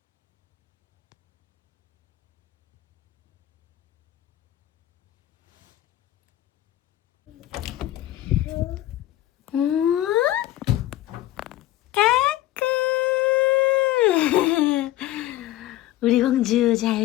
까꿍. 우리 공주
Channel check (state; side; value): quieter; right; 14.7 dB